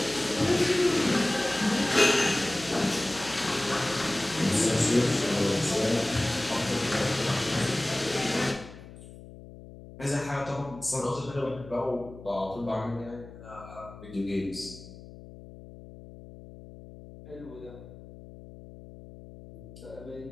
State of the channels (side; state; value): left; noise; hum, 17 dB below the sound